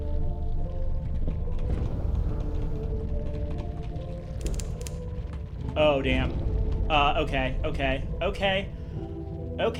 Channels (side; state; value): both; identical; correlation 1.00